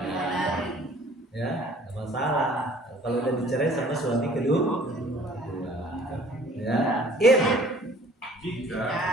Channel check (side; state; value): both; normal; correlation 0.53